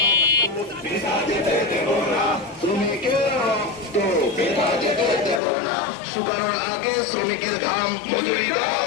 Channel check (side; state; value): right; drops out; at 5.4 s